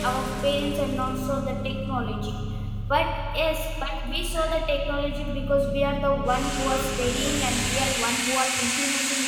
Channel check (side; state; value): both; identical; correlation 1.00